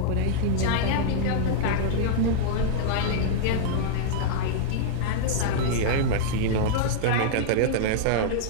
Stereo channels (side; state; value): both; different; correlation -0.01